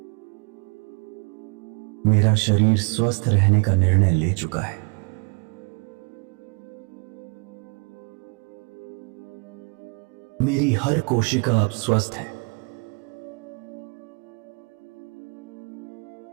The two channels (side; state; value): left; quieter; 32.3 dB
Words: मेरा शरीर स्वस्थ रहने का निर्णय ले चुका है। मेरी हर कोशिका अब स्वस्थ है।